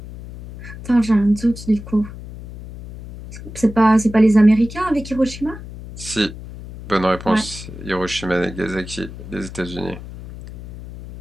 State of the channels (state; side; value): noise; left; hum, 13 dB below the sound